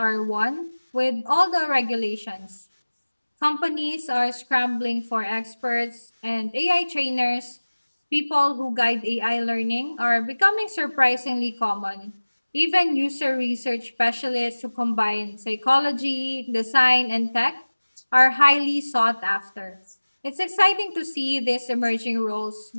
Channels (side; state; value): both; inverted; correlation -1.00